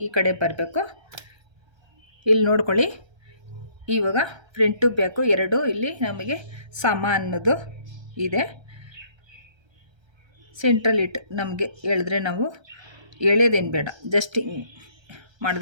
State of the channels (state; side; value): late; left; 1.3 ms